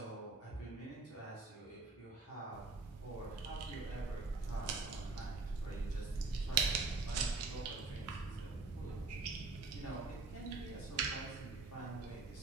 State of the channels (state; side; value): quieter; left; 3.8 dB